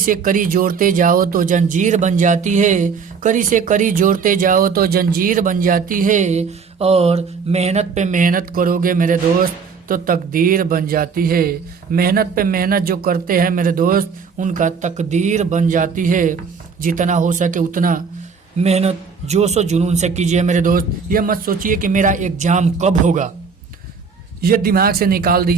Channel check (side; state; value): left; quieter; 5.6 dB